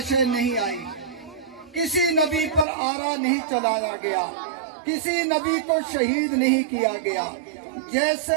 نہیں آئی، کسی نبی پر آرا نہیں چلایا گیا، کسی نبی کو شہید نہیں کیا گیا۔ جیسے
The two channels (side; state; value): left; drops out; at 2.7 s